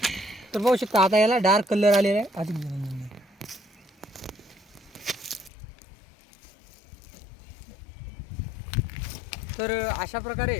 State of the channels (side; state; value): right; drops out; at 5.5 s